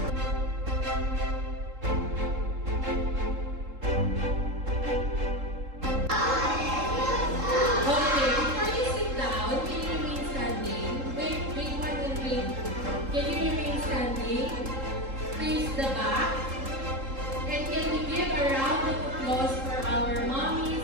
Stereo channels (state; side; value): late; left; 3.7 ms